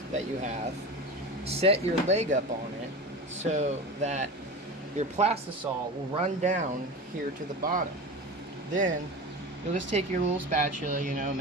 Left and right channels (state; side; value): normal; both; correlation 0.29